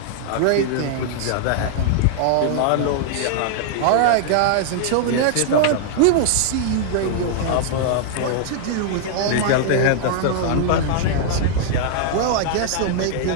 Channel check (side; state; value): both; different; correlation -0.01